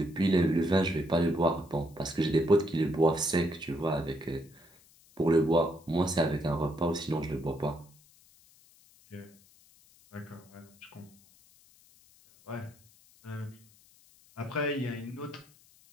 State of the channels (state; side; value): noise; left; hiss, 28 dB below the sound